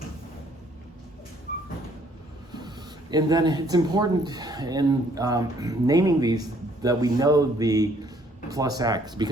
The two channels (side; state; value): both; normal; correlation 0.63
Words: And then it's important in naming these that we know the plus x,